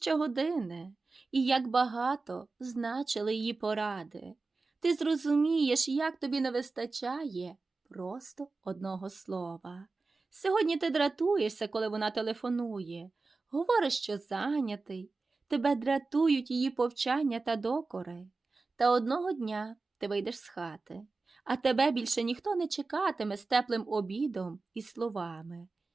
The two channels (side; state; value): left; quieter; 3.8 dB